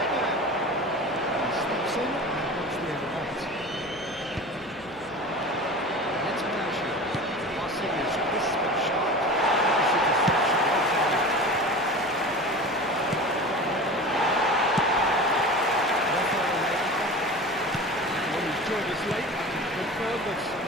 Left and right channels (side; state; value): right; noise; hum, 25 dB below the sound